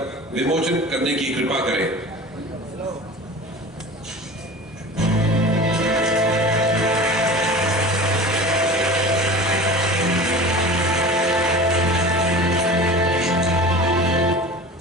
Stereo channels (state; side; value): normal; both; correlation 0.36